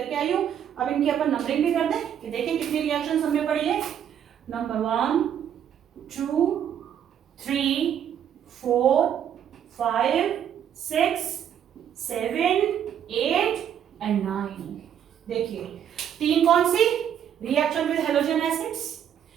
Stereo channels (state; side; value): quieter; left; 9.3 dB